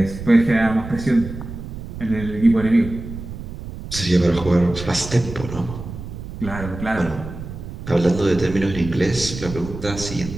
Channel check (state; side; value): noise; right; rumble, 10 dB below the sound